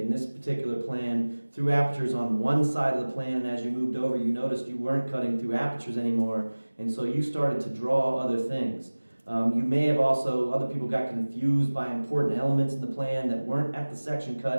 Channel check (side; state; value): both; inverted; correlation -1.00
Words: this particular plan, through apertures on one side of the plan, and as you moved over you noticed you weren't cutting through apertures anymore, and so you started to draw other things. You may have also, other people got confused by important elements in the plan that weren't at the section